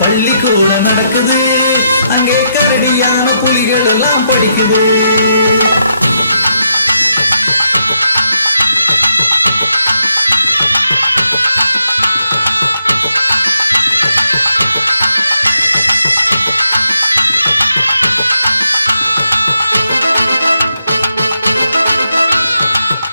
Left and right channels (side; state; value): both; inverted; correlation -0.80